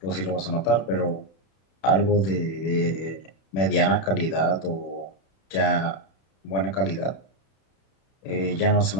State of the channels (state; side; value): late; right; 31 ms